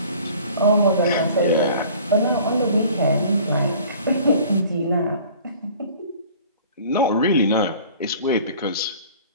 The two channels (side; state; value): both; inverted; correlation -0.48